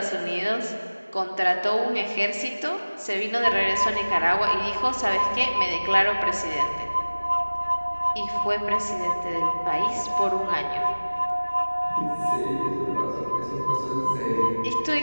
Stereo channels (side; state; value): both; inverted; correlation -1.00